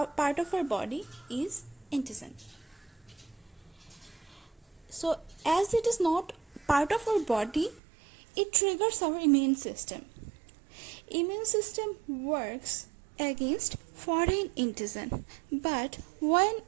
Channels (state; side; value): drops out; left; at 7.8 s